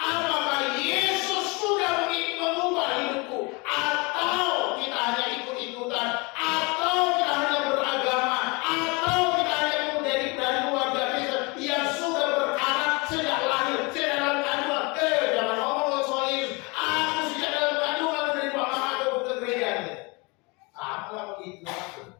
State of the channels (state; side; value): quieter; right; 28.0 dB